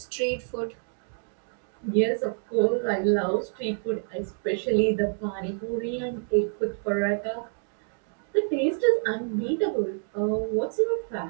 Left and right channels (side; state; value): left; silent; digital silence